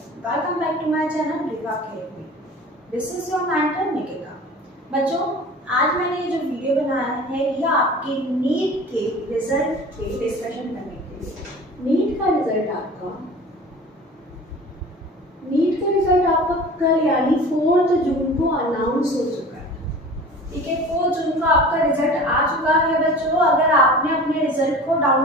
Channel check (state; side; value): normal; both; correlation 0.40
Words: welcome back to my channel Riva Academy. This is your mentor Nikita. बच्चों, आज मैंने ये जो वीडियो बनाया है ये आपके नीट के रिजल्ट पे डिस्कशन करने के लिए। नीट का रिजल्ट आपका कल यानी 4 जून को अनाउंस हो चुका है। ठीक है, 4 जून को आपका रिजल्ट आ चुका है बच्चों। अगर आपने अपने रिजल्ट को